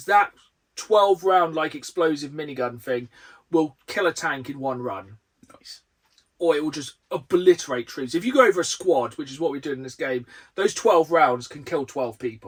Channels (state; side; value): identical; both; correlation 1.00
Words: that 12 round like explosive minigun thing will kill a tank in 1 run. Nice. Or it will just obliterate troops. If you go over a squad, which is what we do in this game, those 12 rounds can kill 12